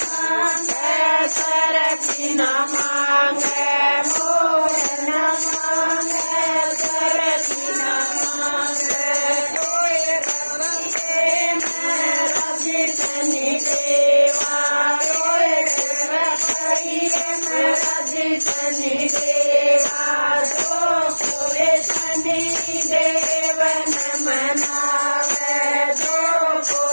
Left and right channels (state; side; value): inverted; both; correlation -1.00